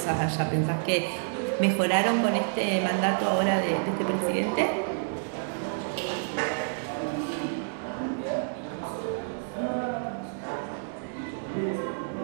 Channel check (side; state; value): left; silent; 59 dB below the other